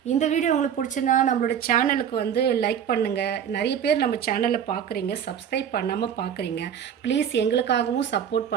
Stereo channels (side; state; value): left; quieter; 8.7 dB